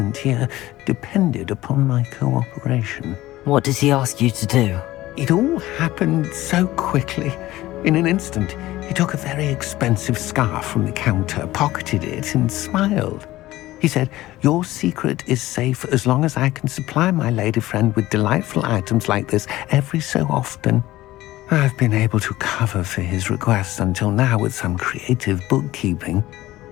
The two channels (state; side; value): quieter; right; 16.5 dB